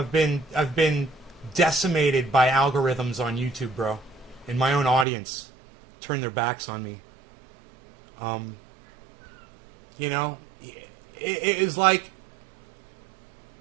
been decimated by algorithms on YouTube, bro. And my own audience turned their backs on me. You know, it is like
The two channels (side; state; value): left; drops out; at 5.1 s